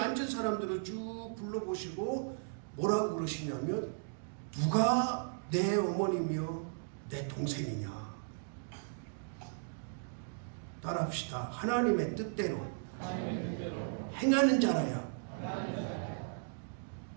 사람들을 쭉 둘러보시고 뭐라고 그러시냐면 누가 내 어머니며 내 동생이냐. 따라합시다. 하나님의 뜻대로 행하는 자라야.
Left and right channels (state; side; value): silent; left; digital silence